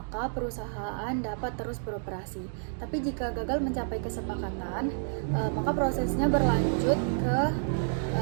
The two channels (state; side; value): silent; left; digital silence